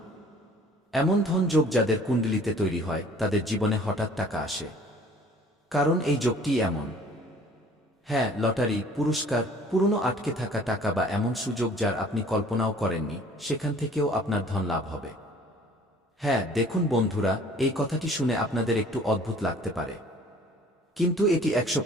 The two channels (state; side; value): normal; both; correlation 0.52